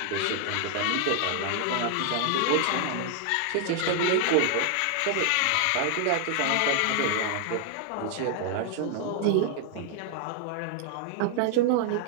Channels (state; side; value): different; both; correlation 0.00